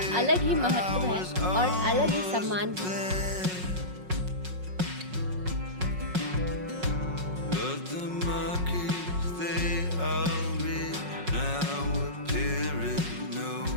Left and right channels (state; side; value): late; left; 5.5 ms